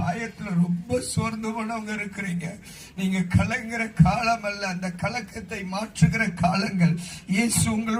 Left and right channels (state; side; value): identical; both; correlation 1.00